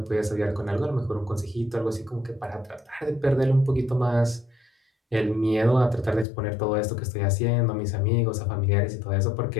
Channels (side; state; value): right; drops out; at 6.2 s